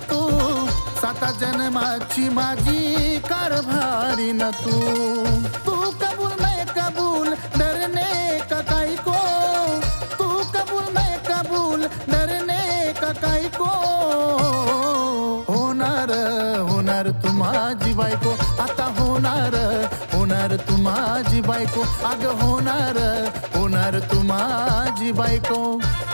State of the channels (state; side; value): inverted; both; correlation -1.00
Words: तू, 7 जन्माची माझी कारभारी न तू। तू कबूल मैं कबूल डरने का काई को, तू कबूल मैं कबूल डरने का काई को। होणार होणार तू माझी बायको, आता होणार होणार तू माझी बायको, अग होणार होणार तू माझी बायको।